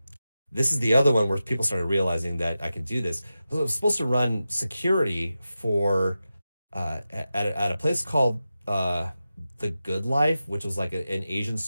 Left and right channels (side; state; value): both; inverted; correlation -0.93